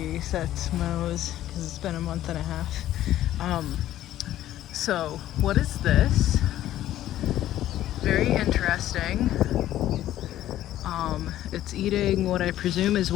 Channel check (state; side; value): quieter; right; 13.2 dB